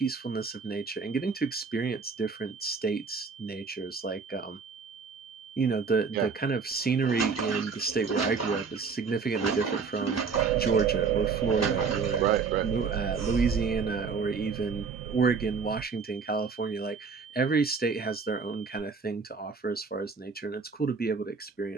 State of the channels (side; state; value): left; quieter; 5.2 dB